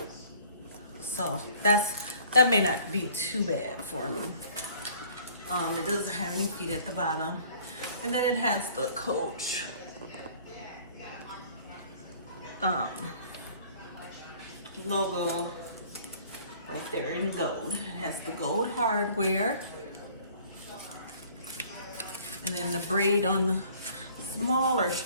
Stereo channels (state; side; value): inverted; both; correlation -0.54